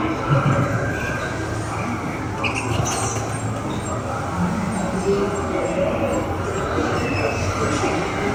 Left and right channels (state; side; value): identical; both; correlation 1.00